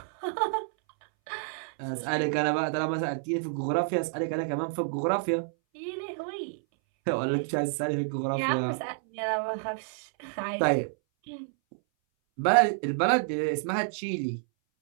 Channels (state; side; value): silent; left; 59 dB below the other